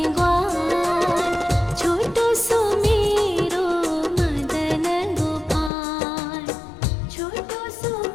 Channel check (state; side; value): drops out; right; at 5.7 s